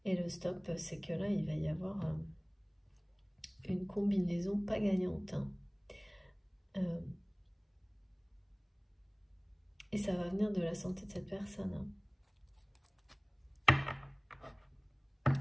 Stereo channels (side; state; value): both; identical; correlation 1.00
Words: Et le stop, c'est que là il va y avoir une combinaison pas gagnante. Hein. Et ça va venir de la santé de cette personne. Hein.